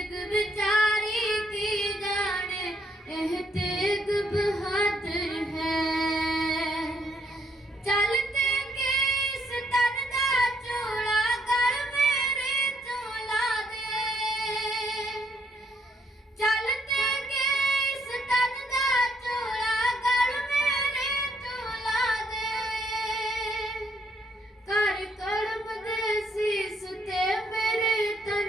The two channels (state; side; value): normal; both; correlation 0.71